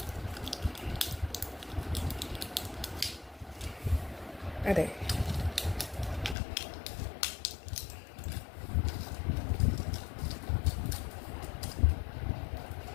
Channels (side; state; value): right; drops out; at 6.4 s